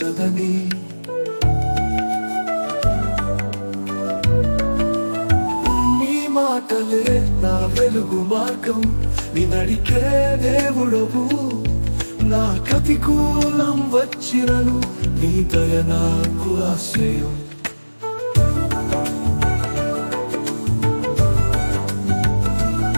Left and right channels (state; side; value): inverted; both; correlation -1.00